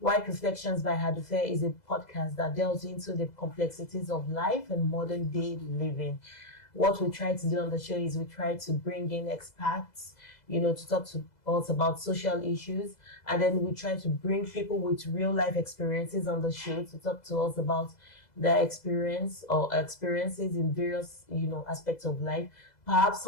Reflections by Hadufe is a podcast that delves into the complexities of life and modern day living. What we try to do on the show is we try to bring in experts, to talk to us about social issues. And then we try to bring people with real life experiences on the show to talk to us about their experience or experiences in various, aspects of life. Perhaps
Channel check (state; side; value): late; right; 2.0 ms